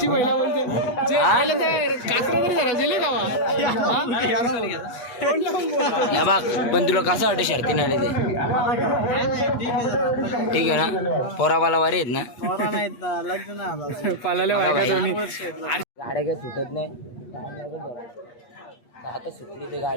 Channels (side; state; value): right; late; 8.4 ms